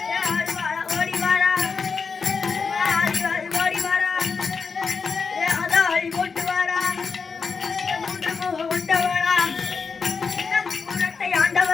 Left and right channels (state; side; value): quieter; right; 5.2 dB